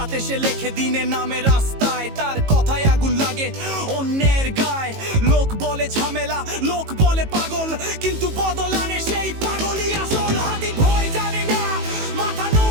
সে লেখে, দিনে নামে রাস্তায়। তার কথায় আগুন লাগে অন্যের গায়ে। লোক বলে ঝামেলা, লোক বলে পাগল, কিন্তু বদল আনে সেই পাগলই আসল। হাদি ভয় জানে না, মাথা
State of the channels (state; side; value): late; left; 18 ms